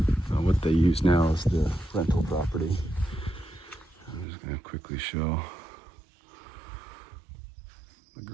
what they use now as the rental property. I'm just going to quickly show the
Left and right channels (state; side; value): drops out; left; at 4.2 s